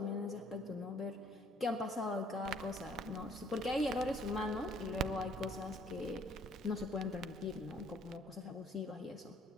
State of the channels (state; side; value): normal; both; correlation 0.61